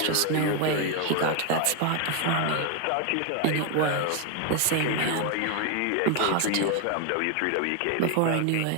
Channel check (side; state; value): both; different; correlation 0.01